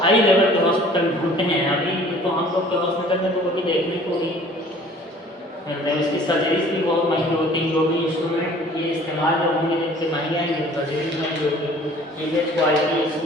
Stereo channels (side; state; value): both; normal; correlation 0.51